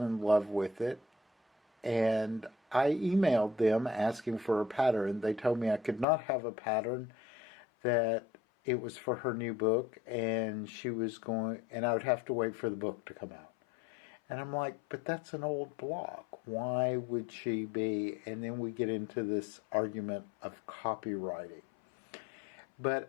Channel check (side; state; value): right; drops out; at 6.1 s